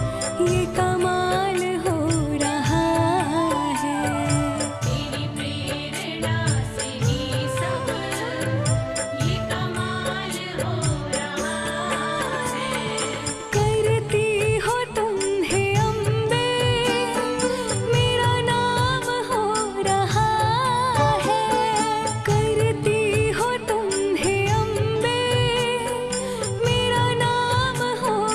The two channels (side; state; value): both; identical; correlation 1.00